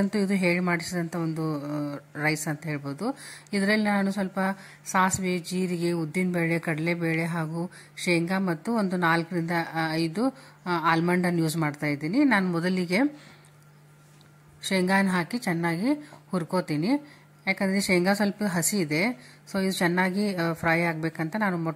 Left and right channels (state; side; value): identical; both; correlation 1.00